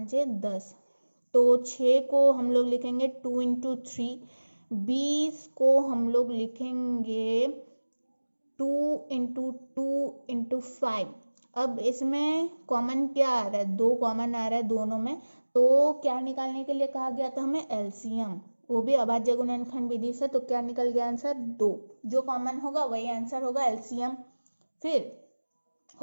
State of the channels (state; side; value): inverted; both; correlation -1.00